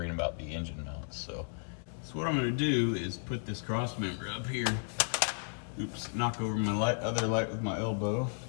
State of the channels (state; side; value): silent; right; 55 dB below the other